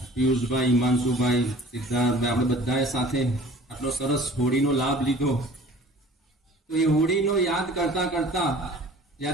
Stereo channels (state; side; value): normal; both; correlation 0.47